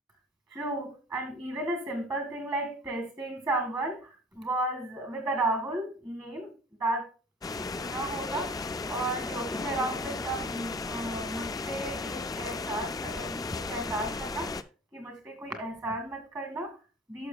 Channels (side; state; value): both; normal; correlation 0.43